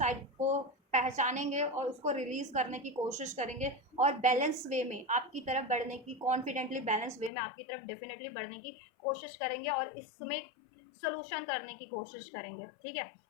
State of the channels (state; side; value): drops out; right; at 7.3 s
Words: को पहचानेंगे और उसको रिलीज करने की कोशिश करेंगे और बैलेंस वे में आपकी तरफ बढ़ने की, कॉन्फिडेंटली बैलेंस वे में आपकी तरफ डेफिनेटली बढ़ने की कोशिश करेंगे और इसमें सोल्यूशन करने की कोशिश करेंगे, ठीक है,